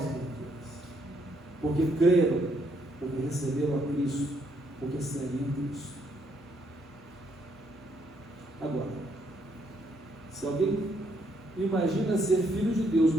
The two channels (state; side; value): normal; both; correlation 0.72